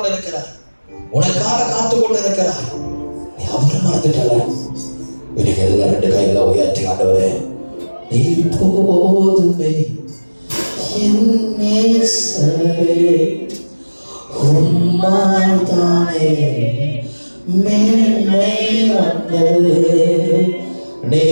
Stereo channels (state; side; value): inverted; both; correlation -1.00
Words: இருக்கிறார், உனக்காக காத்து கொண்டு இருக்கிறார். நீ அவரை மறந்துட்டல. இன்னைக்கு எல்லாம் 2 கைகளை உயர்த்தி ஆண்டவரே, நீ போதுமே என் நேசரே, உம்மால் தானே மேன்மை வந்தது, நீ